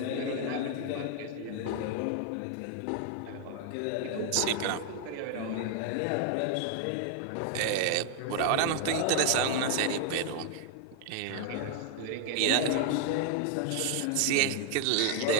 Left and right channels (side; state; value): both; different; correlation 0.00